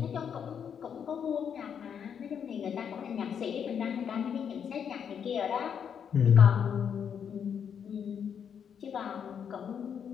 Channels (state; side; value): quieter; right; 7.7 dB